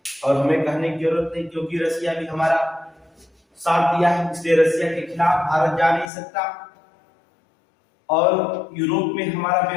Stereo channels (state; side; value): drops out; right; at 6.1 s